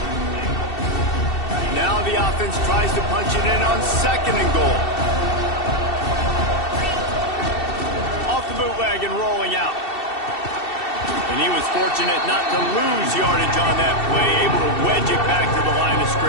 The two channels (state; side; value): late; right; 2.7 ms